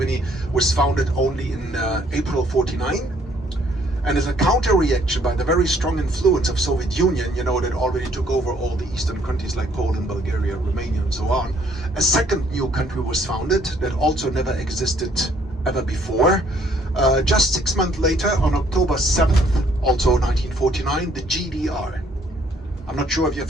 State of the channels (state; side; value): normal; both; correlation 0.64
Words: was founded only in April 49. And as a counter-reaction by the very strong influence of Soviet Union, you know, that already took over all the eastern countries like Poland, Bulgaria, Romania, and so on, a second new country was founded that also never existed ever before. Just 6 months later, on October 7th, also 1949, the GDR. I'm not sure if you're